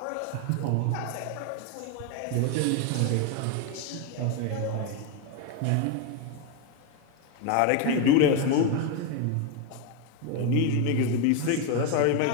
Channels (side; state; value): both; different; correlation 0.02